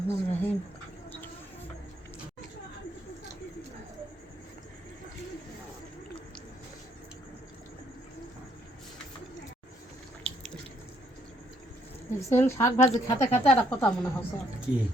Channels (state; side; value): normal; both; correlation 0.70